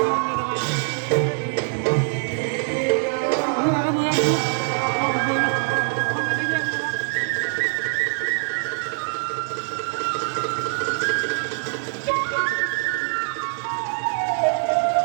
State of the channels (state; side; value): silent; left; digital silence